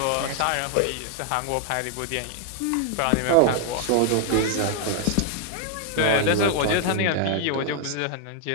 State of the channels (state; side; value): different; both; correlation 0.00